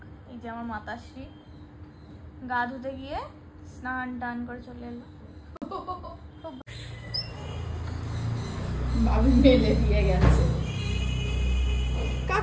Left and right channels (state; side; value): identical; both; correlation 1.00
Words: এই যে আমার মাতাশ্রী, গা ধুতে গিয়ে স্নান টান করে চলে এলো। ভাবি মেলে দিয়ে গেছে,